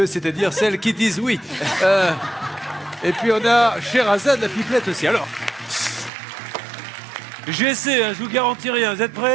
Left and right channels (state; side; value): drops out; left; at 6.1 s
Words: c'est-à-dire celles qui disent oui. Et puis on a Sherazade, la pipelette aussi. Alors, j'essaie, hein, je vous garantis rien. Vous êtes